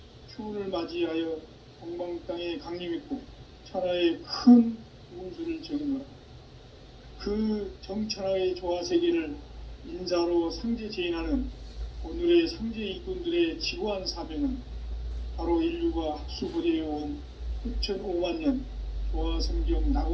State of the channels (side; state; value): both; identical; correlation 1.00